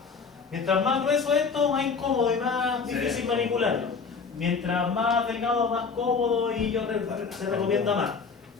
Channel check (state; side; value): quieter; right; 5.2 dB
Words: Mientras más grueso esto, más incómodo y más difícil manipularlo. Mientras más delgado, más cómodo y se recomienda más.